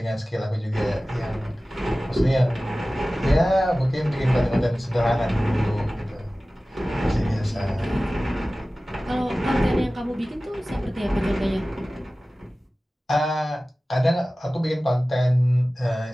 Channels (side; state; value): both; normal; correlation 0.97